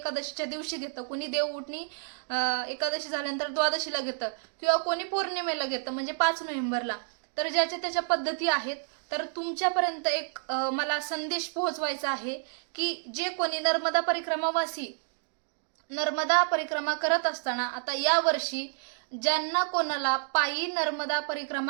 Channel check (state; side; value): silent; left; 58 dB below the other